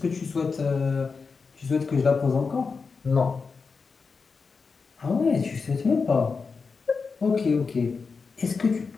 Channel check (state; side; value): quieter; right; 4.9 dB